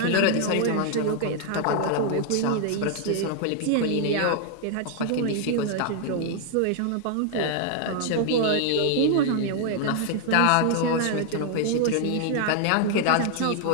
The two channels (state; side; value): different; both; correlation 0.00